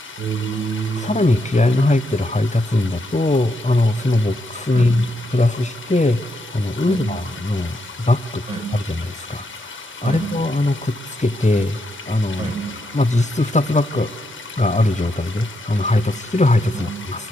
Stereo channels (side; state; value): both; normal; correlation 0.80